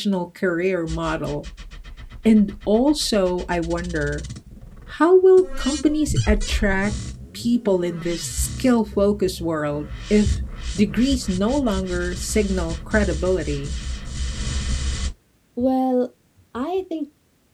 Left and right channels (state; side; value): identical; both; correlation 1.00